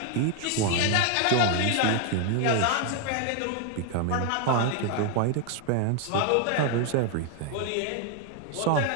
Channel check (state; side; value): different; both; correlation 0.00